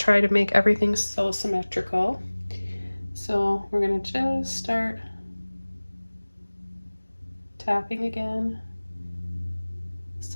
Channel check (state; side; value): inverted; both; correlation -1.00